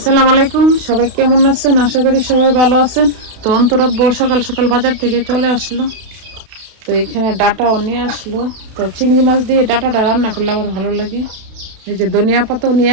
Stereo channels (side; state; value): left; late; 32 ms